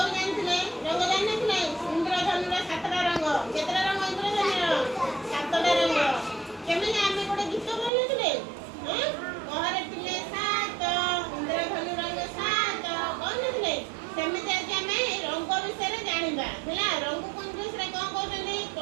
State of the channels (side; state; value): left; drops out; at 7.9 s